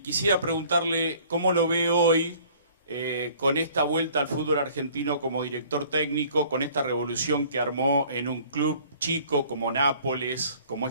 quisiera preguntarle cómo lo ve hoy con esta vuelta al fútbol argentino como director técnico, con esta revolución que armó en un club chico como Nápoles, como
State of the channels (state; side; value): inverted; both; correlation -0.54